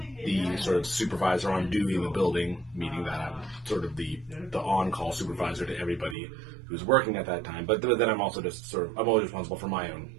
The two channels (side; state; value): left; drops out; at 6.2 s